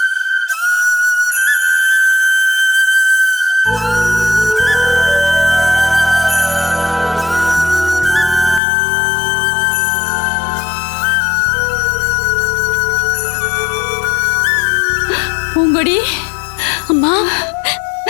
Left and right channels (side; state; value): right; drops out; at 8.6 s